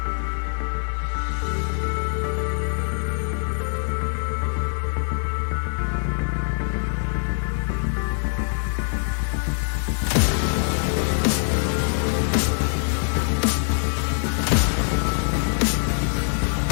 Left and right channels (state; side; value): silent; right; digital silence